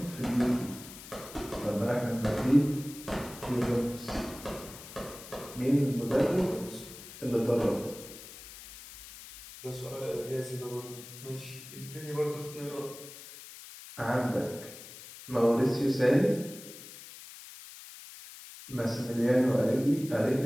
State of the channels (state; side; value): noise; left; hiss, 15 dB below the sound